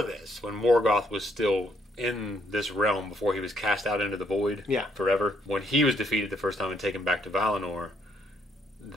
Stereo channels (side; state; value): both; normal; correlation 0.71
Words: this, when Morgoth was still in this realm, before he was cast out into the void forever, when he was defeated the first time and taken back to Valinor,